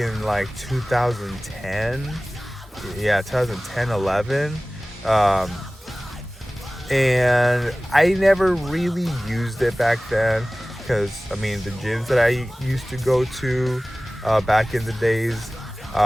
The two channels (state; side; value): normal; both; correlation 0.98